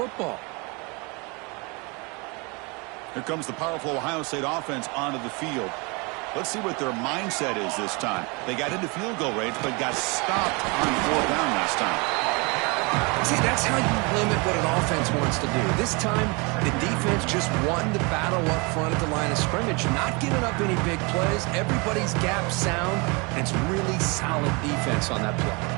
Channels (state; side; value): quieter; left; 29.2 dB